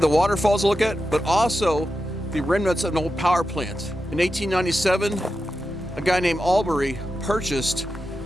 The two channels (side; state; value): both; normal; correlation 0.90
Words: the waterfalls to look at, but also the remnants of an old power plant. In 1897, a guy named Albury purchased